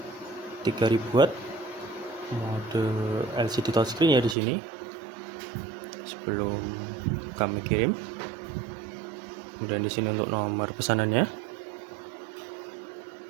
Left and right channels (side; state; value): left; drops out; at 4.4 s